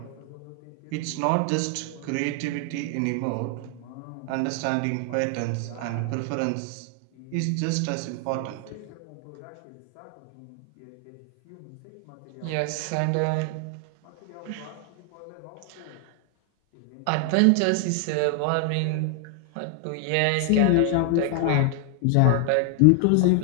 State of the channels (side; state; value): both; different; correlation 0.00